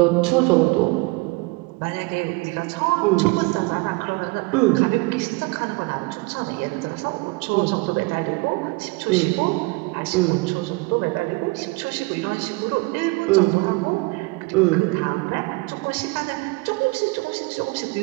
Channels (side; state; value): left; quieter; 25.6 dB